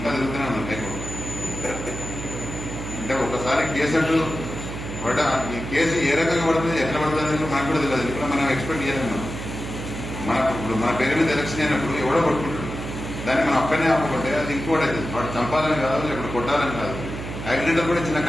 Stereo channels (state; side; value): noise; right; hum, 8 dB below the sound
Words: తిరుగుతూనే ఉన్నాను లైఫ్. అంటే ఒకసారి కేసు అంటూ ఈ కేసు ఏ రకంగా పడుతుంది, ఎట్లా పడుతుంది అనేది మనకు కూడా తెలియదు. ఇప్పుడు మనం ఎక్స్పెక్ట్ చేయలేము. ఇప్పుడు మన పేరు మీద ఎలక్షన్ అయినప్పుడు ఎవడో కొట్టుకుంటాడు, దాన్ని మనం అక్కడనే ఆపకుంటే అది ఇంకోటి అవుతుంది. వాడు చంపాలని కాదు, లేకపోతే కొట్టాలని కాదు. యాక్సిడెంట్ కూడా చిన్న